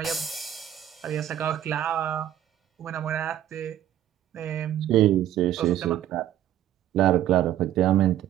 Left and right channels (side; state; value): left; quieter; 11.7 dB